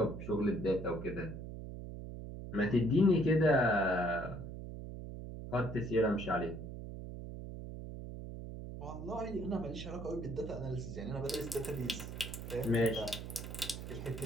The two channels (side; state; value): right; noise; hum, 9 dB below the sound